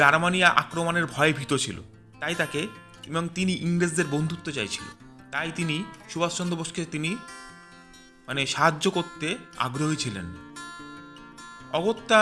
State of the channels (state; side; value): identical; both; correlation 1.00